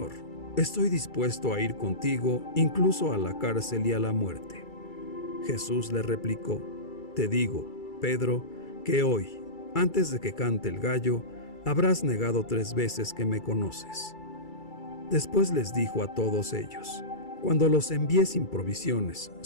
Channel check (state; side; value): late; right; 2.3 ms